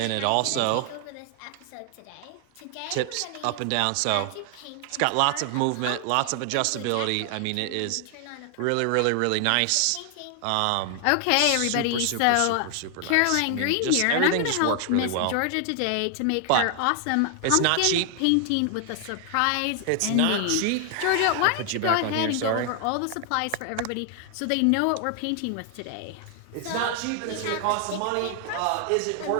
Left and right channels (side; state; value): both; different; correlation 0.00